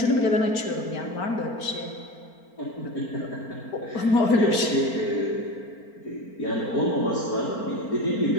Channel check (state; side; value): late; right; 4.4 ms